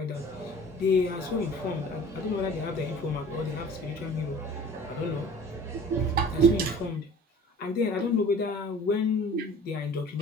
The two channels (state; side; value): normal; both; correlation 0.45